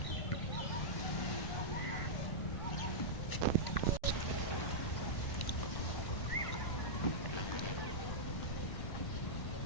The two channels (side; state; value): right; late; 1.1 ms